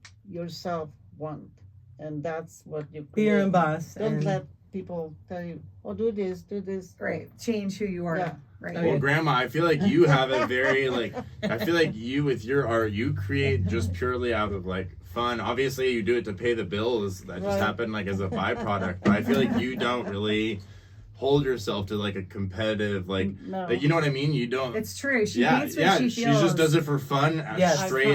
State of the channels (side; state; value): both; identical; correlation 1.00